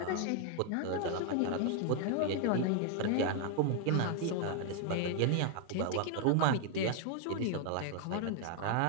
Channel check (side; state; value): both; different; correlation 0.00